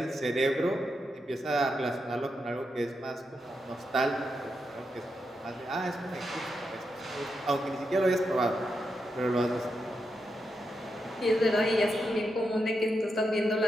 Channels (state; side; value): normal; both; correlation 0.85